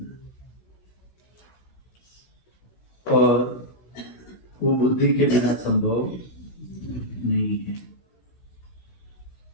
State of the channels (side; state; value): right; late; 16 ms